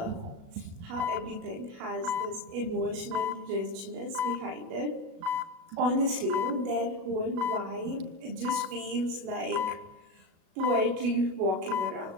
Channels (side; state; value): left; late; 37 ms